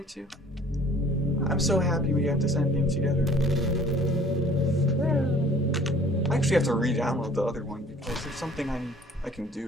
too? I'm so happy we got this ending together. I actually have to re-download the other one because there's something I can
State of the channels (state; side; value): normal; both; correlation 0.52